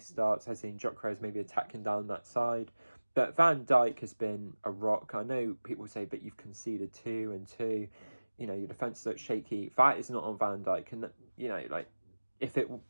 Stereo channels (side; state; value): both; inverted; correlation -1.00